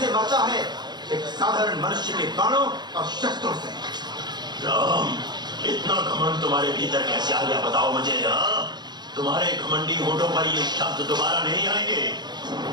मरता है एक साधारण मनुष्य के बाणों और शस्त्रों से। राम, इतना घमंड तुम्हारे भीतर कैसे आ गया बताओ मुझे। तुम्हारे घमंडी होठों पर ये शब्द दोबारा नहीं आएंगे।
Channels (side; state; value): left; late; 0.21 ms